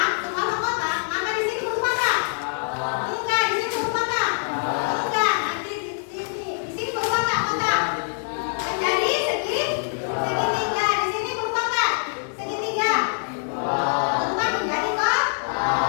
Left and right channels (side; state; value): right; silent; digital silence